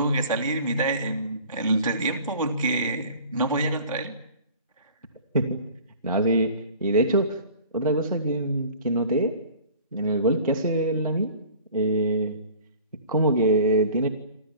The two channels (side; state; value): both; inverted; correlation -0.46